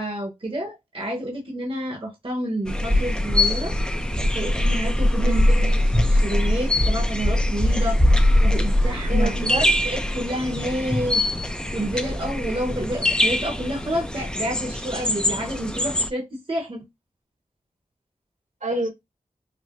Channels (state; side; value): normal; both; correlation 0.83